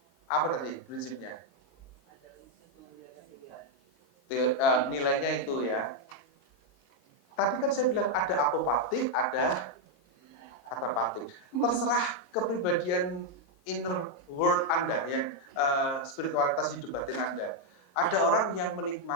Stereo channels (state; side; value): late; right; 22 ms